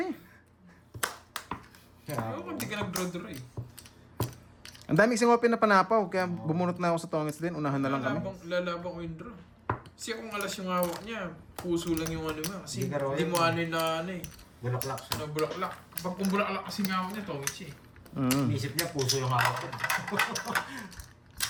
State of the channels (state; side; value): identical; both; correlation 1.00